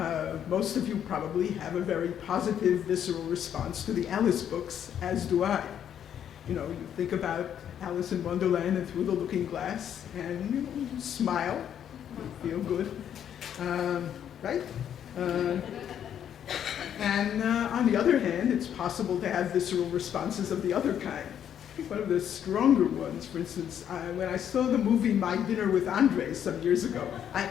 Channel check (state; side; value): quieter; right; 9.4 dB